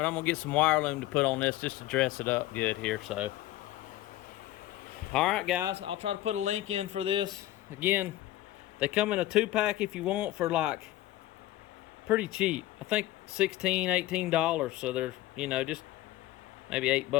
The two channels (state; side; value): quieter; right; 15.5 dB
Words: I'm gonna get some wire loom to put on this just to dress it up good here. So all right guys, I'll try to put a link in for this. Again, they come in a 2-pack if you want for like pretty cheap. I think $16-18. So they're, you know, just maybe